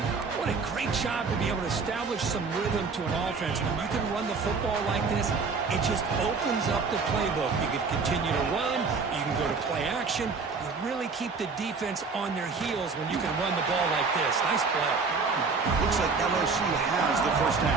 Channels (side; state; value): left; quieter; 4.7 dB